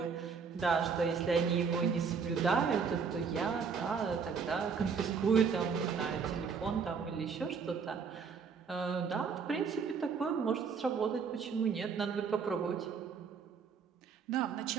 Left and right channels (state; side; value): quieter; left; 5.8 dB